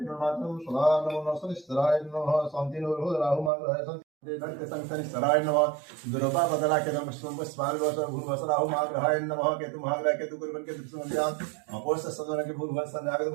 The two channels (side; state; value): left; drops out; at 3.5 s